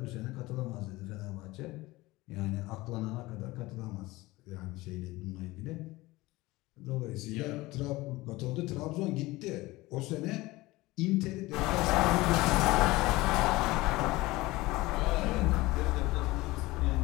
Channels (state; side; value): quieter; right; 20.1 dB